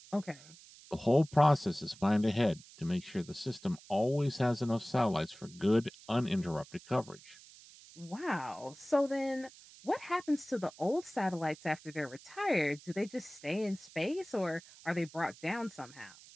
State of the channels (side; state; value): right; noise; hiss, 21 dB below the sound